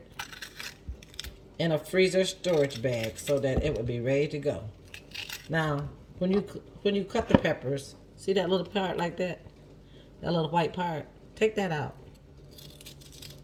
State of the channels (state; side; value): identical; both; correlation 1.00